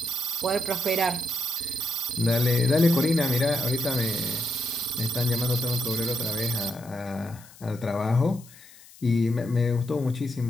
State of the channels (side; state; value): left; noise; hiss, 22 dB below the sound